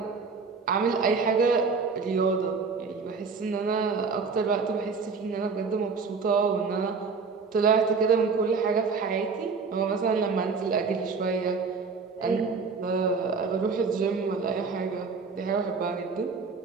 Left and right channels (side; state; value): left; quieter; 4.9 dB